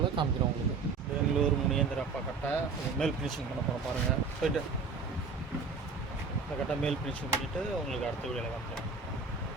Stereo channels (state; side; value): quieter; left; 4.7 dB